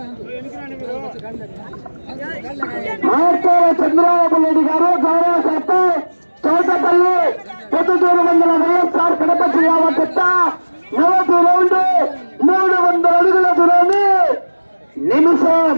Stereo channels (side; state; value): both; inverted; correlation -1.00